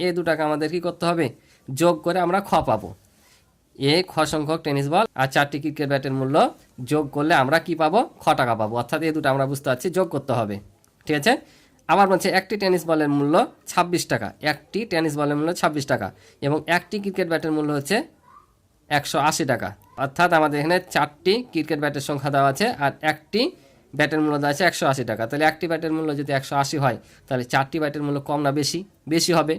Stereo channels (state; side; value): identical; both; correlation 1.00